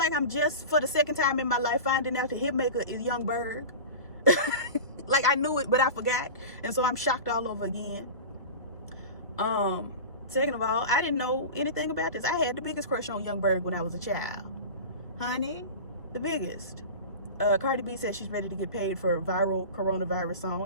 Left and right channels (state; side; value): inverted; both; correlation -0.31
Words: I'm just for the second time in my life finding out the hitmaker is Young Berg. Like I knew it, but I forgot, and so I'm shocked all over again. Second of all, I didn't know anything about this. I had the biggest crush on Young Berg when I was a child, honey, the biggest. Cardi B says she's ready to get paid for a viral coronavirus